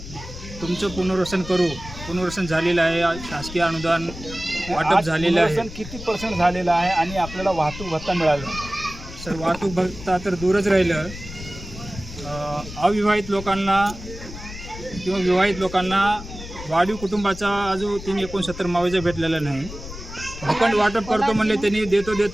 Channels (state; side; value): noise; left; rumble, 12 dB below the sound